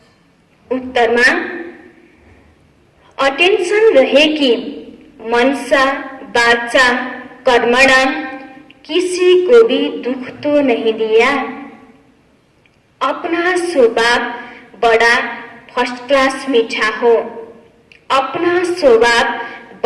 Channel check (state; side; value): identical; both; correlation 1.00